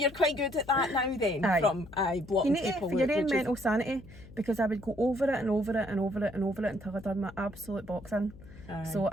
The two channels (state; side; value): noise; left; hum, 19 dB below the sound